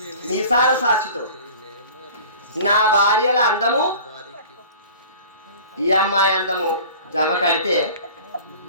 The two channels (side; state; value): both; inverted; correlation -0.43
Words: మీసార సాక్షితో నా భార్యల అందము ఈ అమ్మాయి అందము జమ కడితే